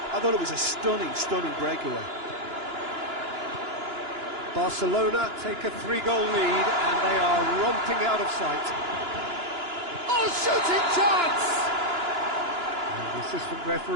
I thought it was a stunning, stunning breakaway. Barcelona take a 3-goal lead and they are romping out of sight. Oh, shooting chance! And the assistant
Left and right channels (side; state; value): left; late; 2.9 ms